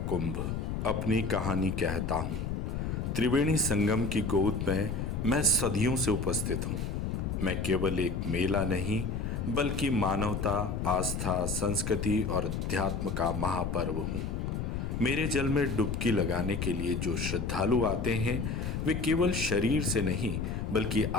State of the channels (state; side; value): noise; left; rumble, 2 dB below the sound